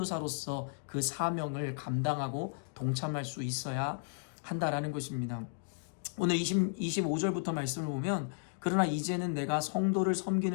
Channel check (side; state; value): right; silent; digital silence